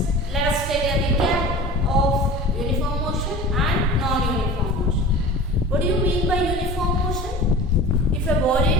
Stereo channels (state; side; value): normal; both; correlation 0.37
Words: let us take a recap of uniform motion and non-uniform motion. What do you mean by uniform motion? If a